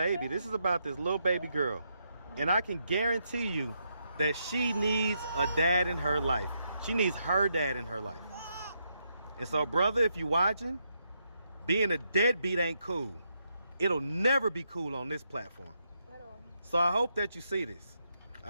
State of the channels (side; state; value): both; inverted; correlation -0.79